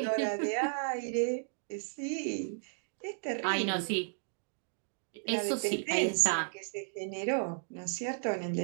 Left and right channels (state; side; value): silent; left; digital silence